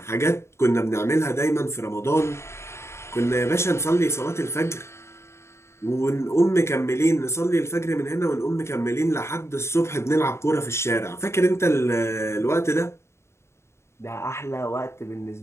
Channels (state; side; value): late; right; 0.13 ms